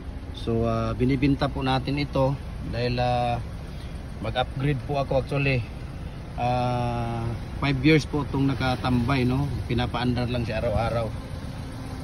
So binibenta po natin ito dahil mag-upgrade po ako actually. 5 years po itong nakatambay, no. Pinapaandar lang siya araw-araw,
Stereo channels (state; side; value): identical; both; correlation 1.00